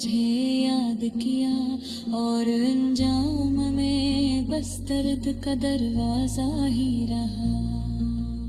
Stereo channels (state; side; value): identical; both; correlation 1.00